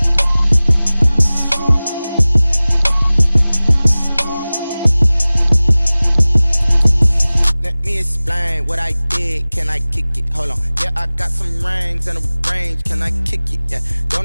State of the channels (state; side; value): inverted; both; correlation -0.99